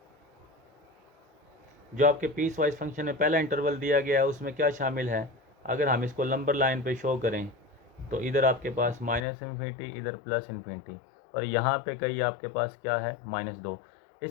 पीस वाइज फंक्शन में पहला इंटरवल दिया गया है उसमें क्या शामिल है, अगर हम इसको नंबर लाइन पे शो करें तो इधर आपके पास -∞, इधर +∞, और यहाँ पे कहीं आपके पास क्या है -2।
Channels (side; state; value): right; drops out; at 9.2 s